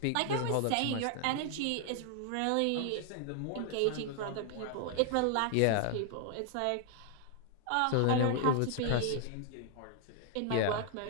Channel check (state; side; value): different; both; correlation 0.00